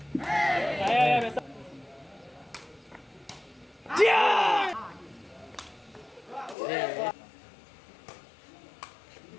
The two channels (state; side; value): drops out; right; at 6.6 s